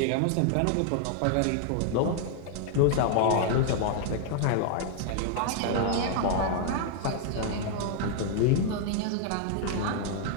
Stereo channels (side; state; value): both; different; correlation 0.00